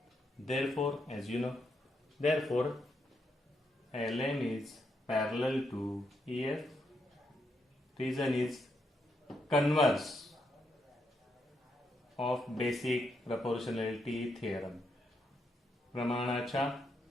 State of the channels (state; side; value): normal; both; correlation 0.79